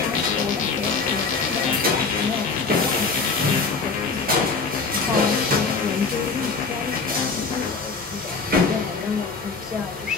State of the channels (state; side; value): quieter; right; 4.6 dB